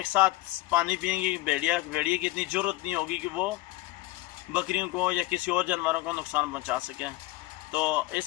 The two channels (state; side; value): quieter; right; 18.8 dB